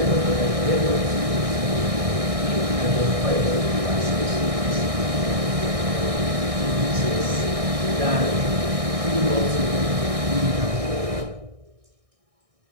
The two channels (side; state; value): left; late; 1.6 ms